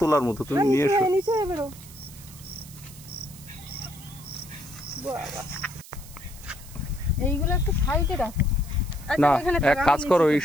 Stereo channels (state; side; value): noise; right; hiss, 18 dB below the sound